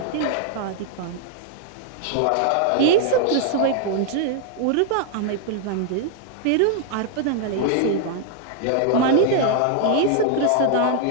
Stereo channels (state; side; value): different; both; correlation 0.00